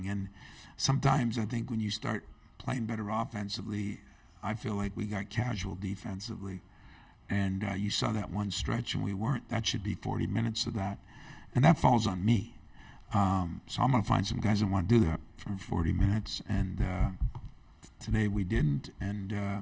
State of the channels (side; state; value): both; identical; correlation 1.00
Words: And sometimes I think when you start playing better offensively, I feel like we got casual defensively. And you saw that one stretch, and we weren't. That should be 40 minutes of that. And that falls on me. So I'm going to find some guys that want to do that for 40 minutes. And today we didn't, and